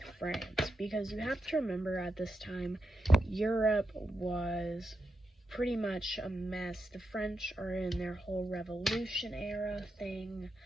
France, because you have to remember at this time, Europe was pretty much a mess. The French are in their whole Revolution era thing.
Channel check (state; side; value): normal; both; correlation 0.86